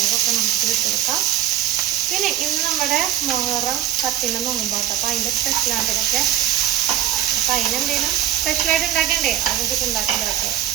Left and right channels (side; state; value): left; quieter; 12.5 dB